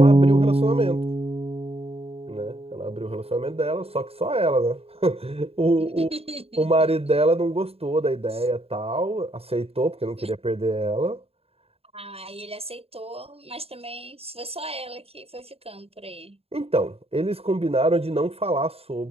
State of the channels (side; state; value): left; late; 0.29 ms